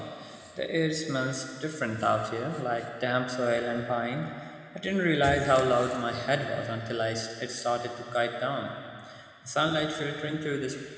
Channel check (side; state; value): both; identical; correlation 1.00